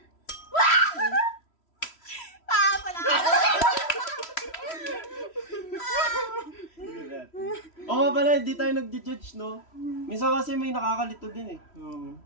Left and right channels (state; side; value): late; right; 3.1 ms